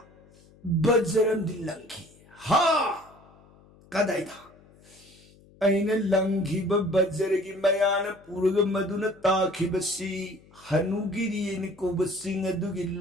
bajaram dilangki ha kadai da aina langhi ba bajaragi mayana purga maduna takhi basi hanugiri ni ko basing adugi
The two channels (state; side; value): noise; left; hum, 27 dB below the sound